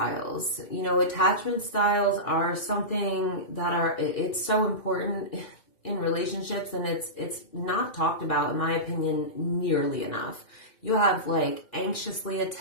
You know, attachment styles are something that it's so important in relationships, and it's not talked about, in my opinion, nearly enough. You have like anxiously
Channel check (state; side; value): late; right; 2.4 ms